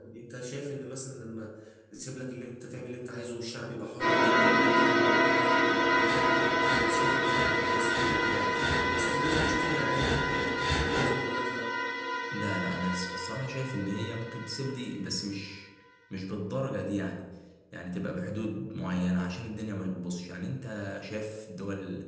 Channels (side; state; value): both; identical; correlation 1.00